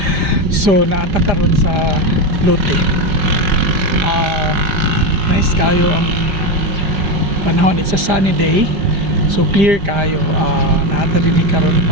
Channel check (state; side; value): late; left; 5.0 ms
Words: So naata karon sa Lote. Nice kayo ang panahon. It's a sunny day. So clear kayo. Naata din karon